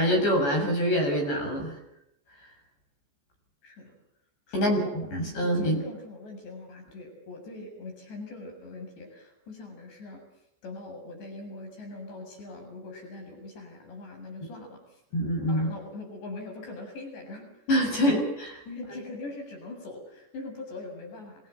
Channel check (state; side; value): late; right; 14 ms